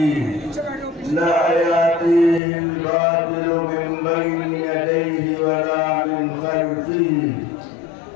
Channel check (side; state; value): right; drops out; at 2.4 s